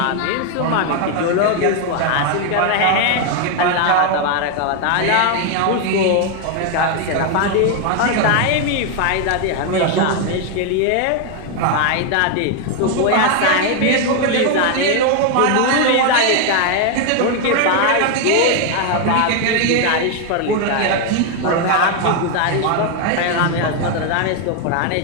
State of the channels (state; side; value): different; both; correlation 0.01